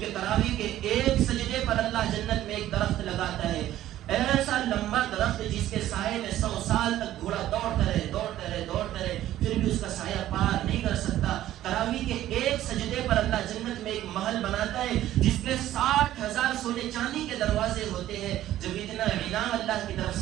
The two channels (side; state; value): left; quieter; 13.4 dB